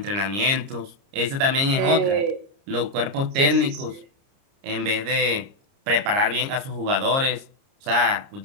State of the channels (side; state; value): left; late; 30 ms